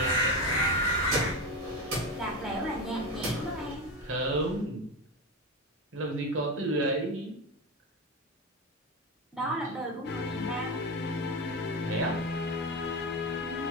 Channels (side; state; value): both; normal; correlation 0.18